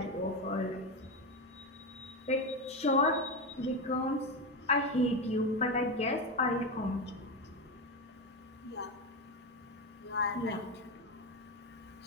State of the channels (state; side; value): normal; both; correlation 0.15